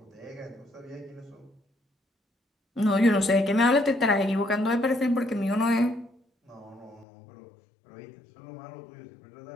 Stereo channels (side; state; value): right; drops out; at 7.1 s